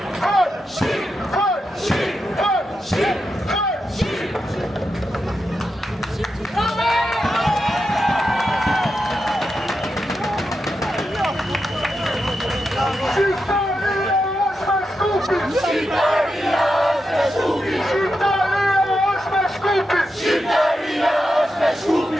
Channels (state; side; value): normal; both; correlation 0.87